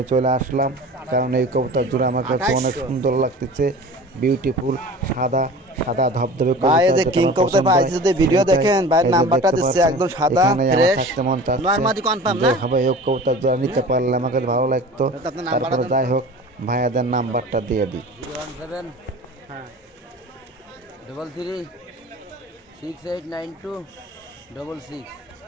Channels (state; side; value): normal; both; correlation 0.39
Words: চলে আসলাম কারণ এই কবুতর জোড়া আমার কাছে অনেক সুন্দর লাগতেছে, বিউটিফুল, সাদা সাদা ধবধবে কবুতর। ভিডিও দেখেন ভাই, নাম্বারটা দিচ্ছে একদম সাদা ফ্রেশ, নরমালি কনফার্ম না ভাই। এই কবুতর যারা নিতে পারলে আমাকে ভালো লাগতো। তারপরে যাই হোক ভাইয়াদের নাম্বারটা দিয়ে দিই। 017 হ্যাঁ 33 6892 66।